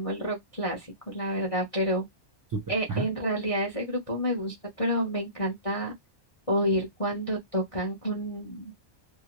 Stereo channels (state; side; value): late; right; 1.6 ms